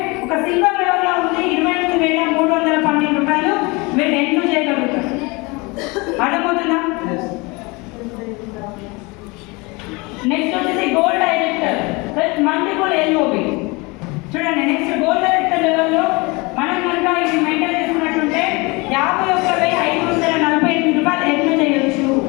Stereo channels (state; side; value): quieter; right; 26.2 dB